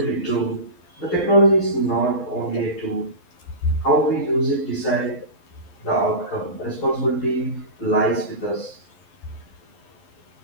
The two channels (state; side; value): late; right; 11 ms